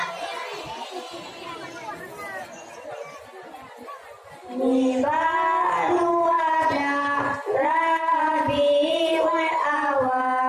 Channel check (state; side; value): identical; both; correlation 1.00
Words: Ini baru ada Rabiul